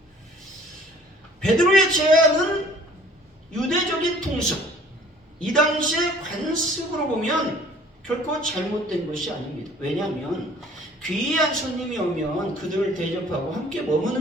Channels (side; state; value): both; normal; correlation 0.53